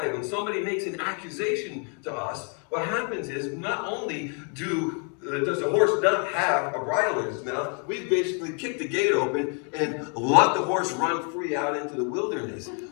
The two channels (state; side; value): quieter; right; 39.5 dB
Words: When somebody makes an accusation to us, what happens is not only does the horse not have a bridle in his mouth, we basically kick the gate open and let the horse run free out into the wilderness.